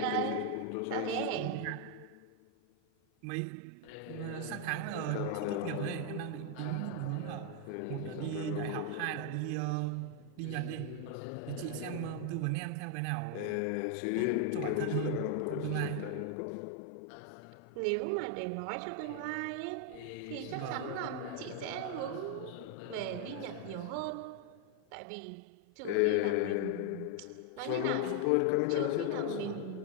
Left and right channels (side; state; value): both; different; correlation 0.00